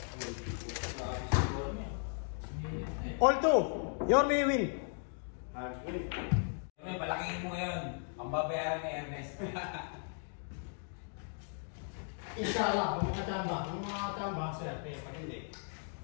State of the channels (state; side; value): silent; right; 54 dB below the other